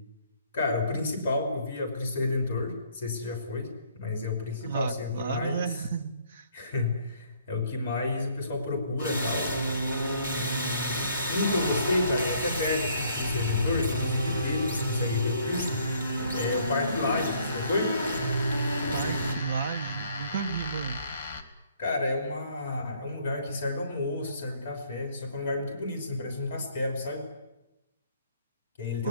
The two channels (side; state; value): both; inverted; correlation -0.63